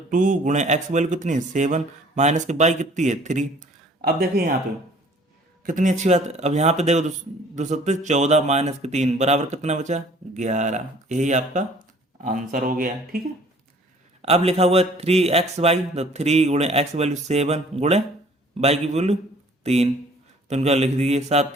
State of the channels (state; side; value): normal; both; correlation 0.54